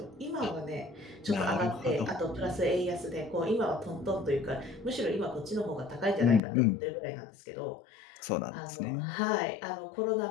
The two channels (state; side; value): drops out; right; at 6.4 s